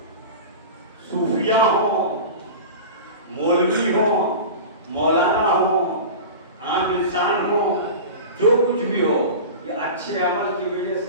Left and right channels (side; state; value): both; inverted; correlation -0.31